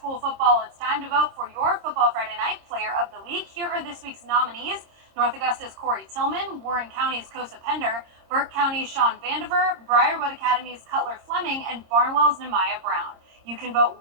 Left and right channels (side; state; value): left; late; 26 ms